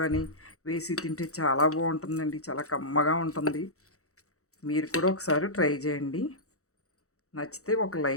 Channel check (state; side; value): late; right; 0.65 ms